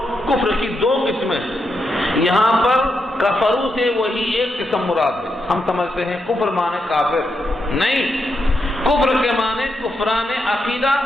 کفر کی دو قسمیں ہیں۔ یہاں پر کفرو سے وہی ایک قسم مراد ہے۔ ہم سمجھتے ہیں کفر مانے کافر، نہیں، کفر کے معنی کفران عقیدہ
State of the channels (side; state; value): both; normal; correlation 0.83